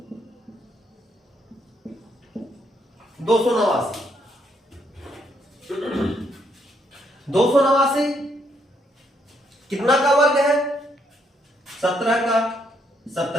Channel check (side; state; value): both; normal; correlation 0.73